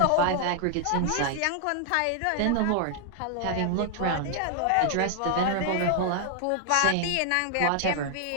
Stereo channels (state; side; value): different; both; correlation 0.00